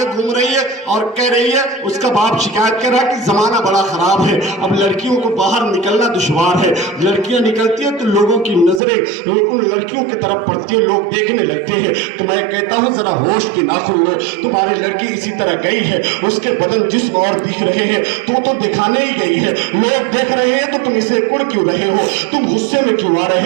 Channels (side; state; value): left; drops out; at 8.8 s